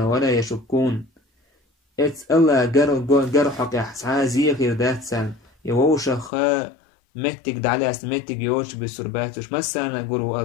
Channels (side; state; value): right; drops out; at 6.3 s